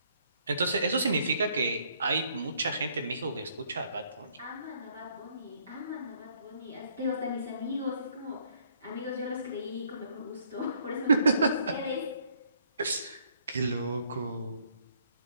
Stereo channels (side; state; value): both; inverted; correlation -0.65